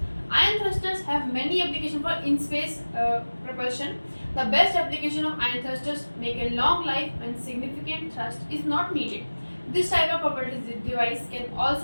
Ion thrusters have many applications for in-space propulsion. The best application of ion thrusters make a long life when significant thrust is not needed. This type of propulsion device can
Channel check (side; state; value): both; inverted; correlation -1.00